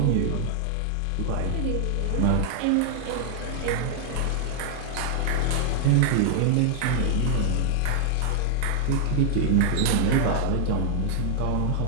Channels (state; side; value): different; both; correlation 0.00